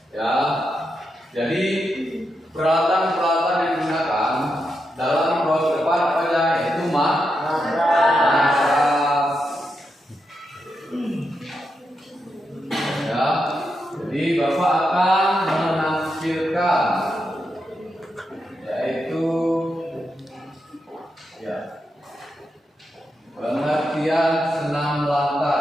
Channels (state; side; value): normal; both; correlation 0.85